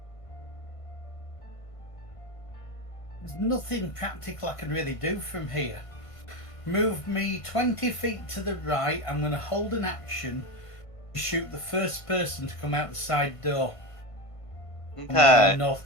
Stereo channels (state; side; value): late; right; 1.5 ms